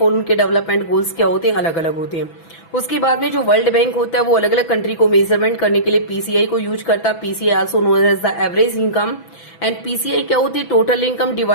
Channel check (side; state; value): right; late; 6.0 ms